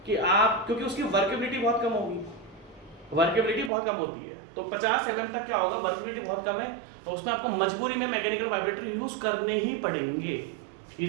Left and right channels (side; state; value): left; drops out; at 3.7 s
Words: कि आप, क्योंकि उसकी वर्केबिलिटी बहुत कम होगी, वर्केबिलिटी बहुत कम होती है, तो 50 mm तक क्या होगा, वर्केबिलिटी बहुत कम है, तो उसमें आपको मजबूरी में मैकेनिकल वाइब्रेटर यूज करने ही पड़ेंगे।